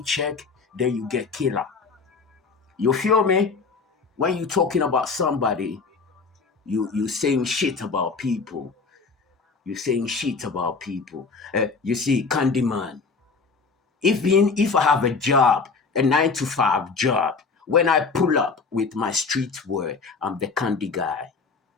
then you get killer. You feel me? When you talking about somebody, you saying shit about people. You see, Candiman. If I have a job, a 9-to-5 job, when I pull up with my streetwear, I'm the candy guy.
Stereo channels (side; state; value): right; quieter; 4.6 dB